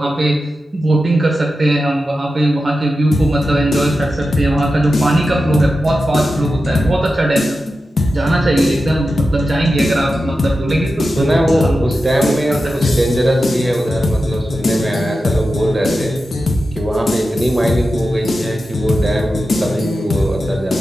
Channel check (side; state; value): both; normal; correlation 0.91